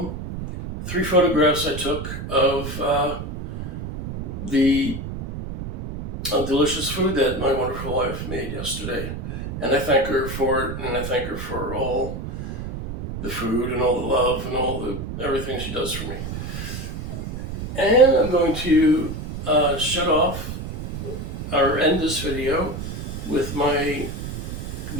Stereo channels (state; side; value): noise; right; rumble, 7 dB below the sound